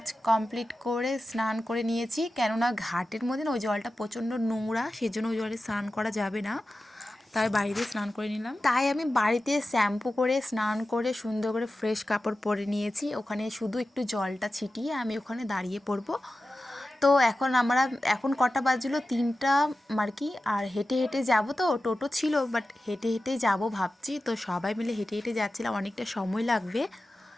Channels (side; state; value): both; normal; correlation 0.94